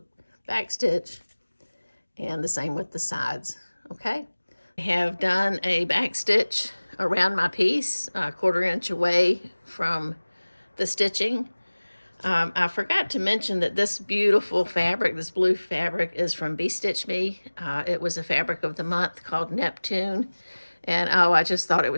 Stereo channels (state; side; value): inverted; both; correlation -1.00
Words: back stitch, and the same with the sides, okay? I have done a back stitch around my piece, 1/4 inch away from the stitching. I forgot to mention that this beautiful fabric, this blue fabric, is from Bee Stitch Me. It was a fabric of the month called Neptune. And oh, I just thought it